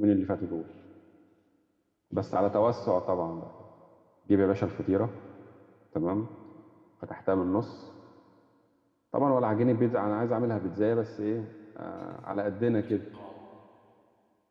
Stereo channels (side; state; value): both; identical; correlation 1.00